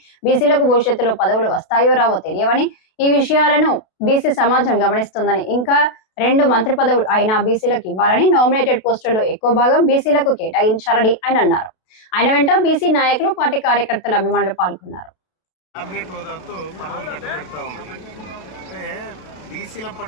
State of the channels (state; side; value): late; right; 32 ms